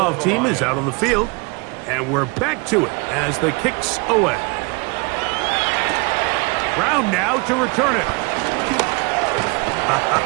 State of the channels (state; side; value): quieter; left; 29.5 dB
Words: for the team is Lions. out on the field. And we're back to it as the kick's away. Brown now to return it.